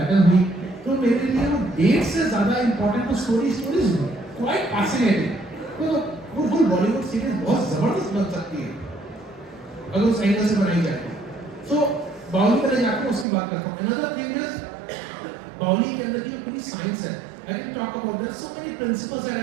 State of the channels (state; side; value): drops out; left; at 13.2 s